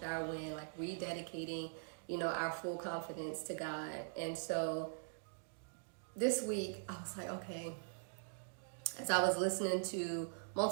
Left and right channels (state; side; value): silent; left; digital silence